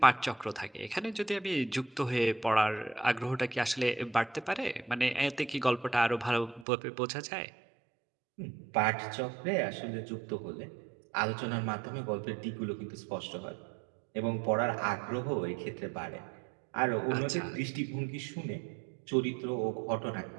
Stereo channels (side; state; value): left; drops out; at 6.7 s